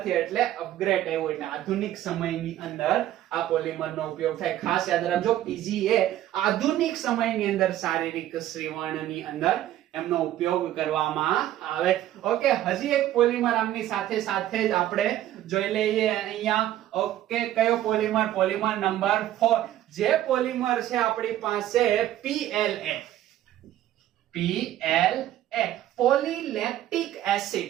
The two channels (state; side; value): quieter; left; 13.1 dB